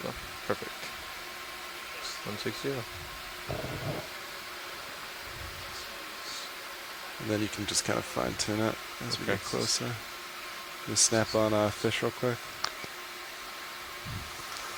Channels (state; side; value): identical; both; correlation 1.00